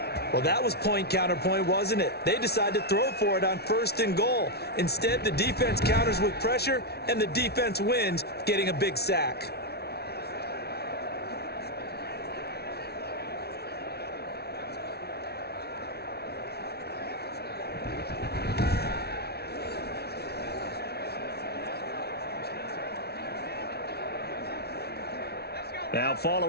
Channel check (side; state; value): right; late; 0.47 ms